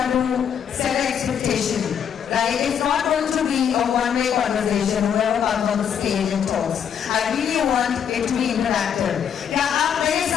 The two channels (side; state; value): right; quieter; 8.2 dB